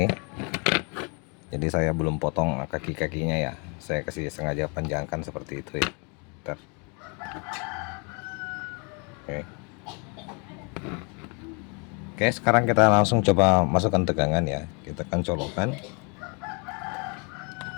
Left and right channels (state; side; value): quieter; right; 33.9 dB